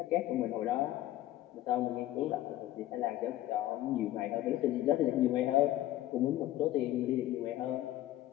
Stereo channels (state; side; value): quieter; right; 14.4 dB